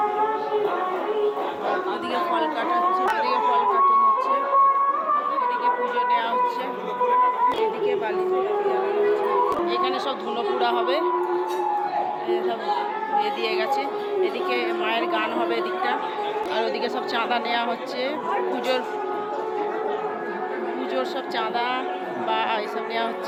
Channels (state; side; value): identical; both; correlation 1.00